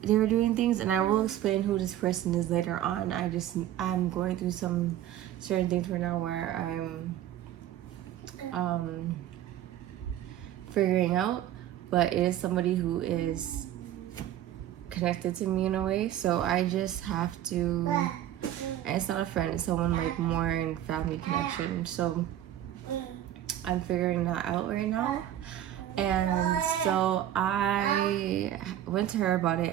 they were doing things, and I will explain who this person is later on. I'm going through some certain things right now where I'm figuring out, but it is somebody who is connected to me in a way, so I just have to, and it's not a friend, it's someone like more in family connection, so I'm figuring that out right now. And so I went to her about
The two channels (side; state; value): left; quieter; 12.2 dB